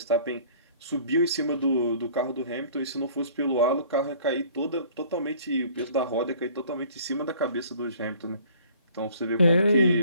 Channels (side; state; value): both; inverted; correlation -0.53